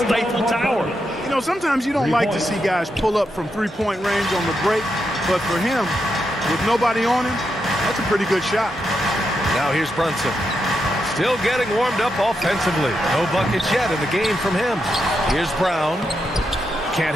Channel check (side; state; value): both; normal; correlation 0.84